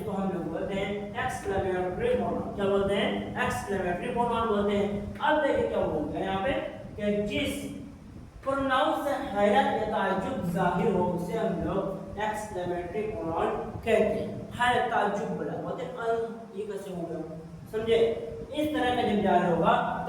हम लोग बोलते हैं एक्सक्लेमेटरी प्रोनाउन। क्या बोलते हैं, एक्सक्लेमेटरी प्रोनाउन बोलते हैं। अब देखिए क्या बोलते हैं यहाँ पे कि जिस प्रोनाउन से हैरत या ताज्जुब जाहिर हो उसे हम लोग एक्सक्लेमेटरी प्रोनाउन कहते हैं। हैरत ताज्जुब वाला बोलते हैं, ये कैसे हो गया, समझे, इस तरह का जब जाहिर होगा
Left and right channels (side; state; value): both; identical; correlation 1.00